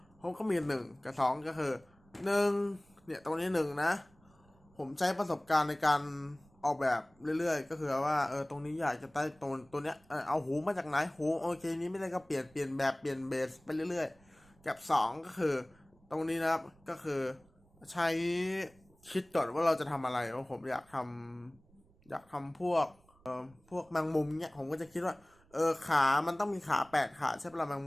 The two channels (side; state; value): right; noise; rumble, 30 dB below the sound